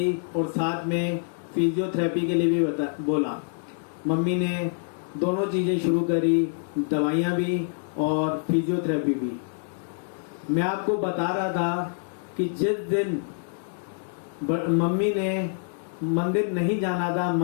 और साथ में फिजियोथेरेपी के लिए भी बोला। मम्मी ने दोनों चीज़ें शुरू करी, दवाइयाँ भी और फिजियोथेरेपी भी। मैं आपको बता रहा था कि जिस दिन मम्मी ने मंदिर नहीं जाना था,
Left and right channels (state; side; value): silent; right; digital silence